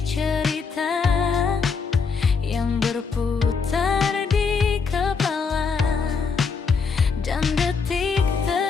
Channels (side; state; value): right; quieter; 5.3 dB